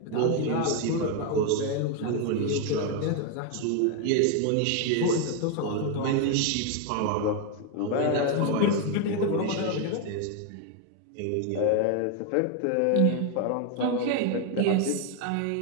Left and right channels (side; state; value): both; different; correlation 0.01